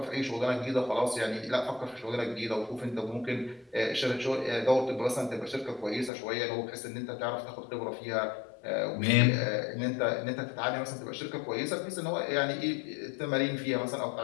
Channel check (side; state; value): right; drops out; at 6.1 s